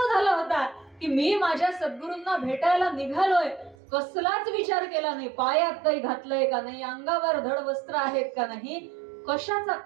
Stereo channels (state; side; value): drops out; left; at 3.8 s